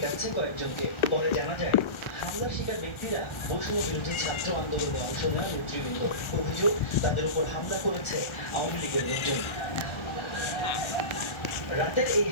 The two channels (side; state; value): right; late; 1.3 ms